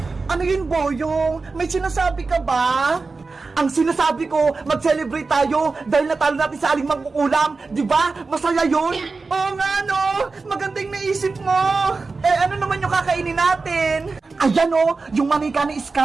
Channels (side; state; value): left; quieter; 4.0 dB